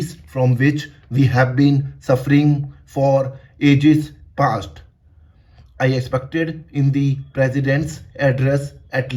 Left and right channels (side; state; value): both; identical; correlation 1.00